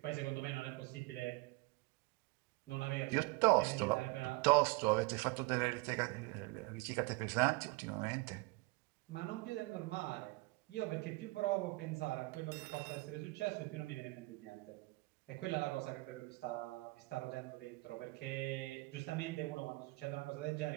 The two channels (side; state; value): left; quieter; 24.7 dB